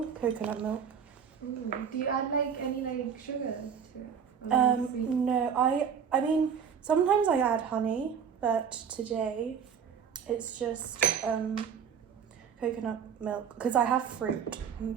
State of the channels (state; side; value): quieter; left; 7.3 dB